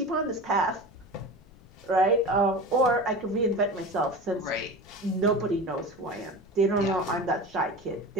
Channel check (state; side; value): noise; left; rumble, 24 dB below the sound